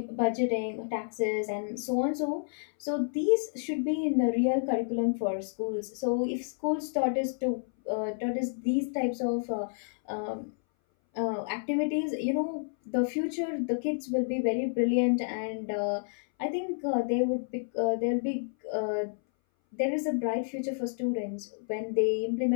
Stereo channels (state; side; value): silent; right; 58 dB below the other